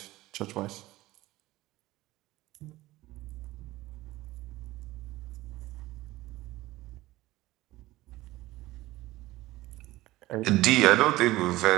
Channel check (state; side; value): quieter; left; 17.9 dB